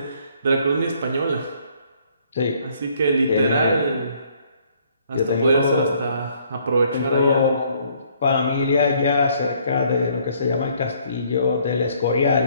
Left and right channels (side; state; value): both; inverted; correlation -0.64